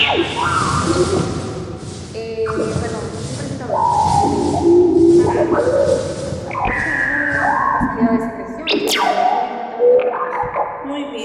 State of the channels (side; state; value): both; identical; correlation 1.00